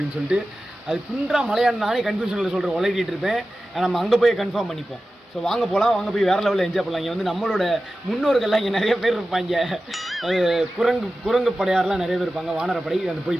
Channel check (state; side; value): normal; both; correlation 0.94